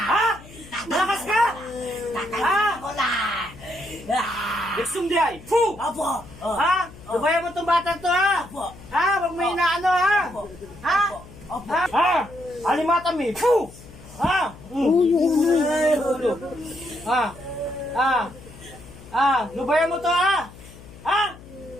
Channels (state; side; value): noise; left; hum, 19 dB below the sound